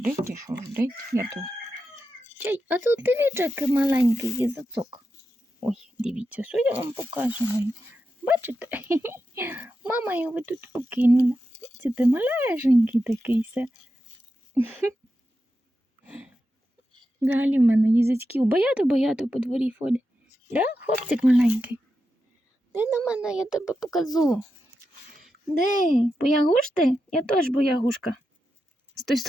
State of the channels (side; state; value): both; normal; correlation 0.88